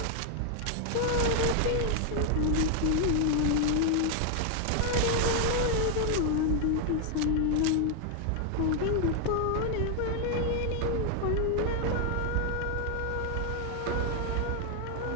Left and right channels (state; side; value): different; both; correlation 0.00